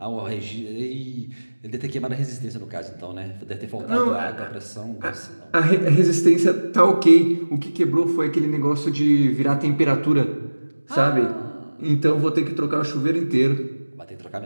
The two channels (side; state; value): both; inverted; correlation -1.00